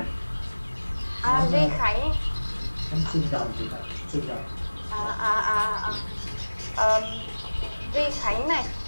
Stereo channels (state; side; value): inverted; both; correlation -1.00